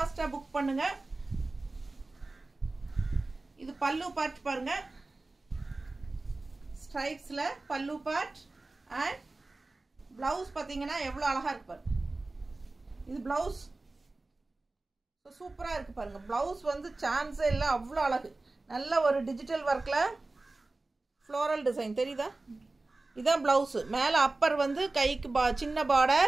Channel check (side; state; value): left; quieter; 3.2 dB